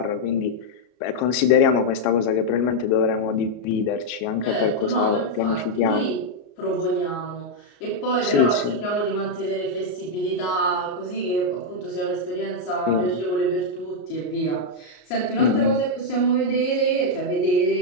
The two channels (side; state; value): right; late; 33 ms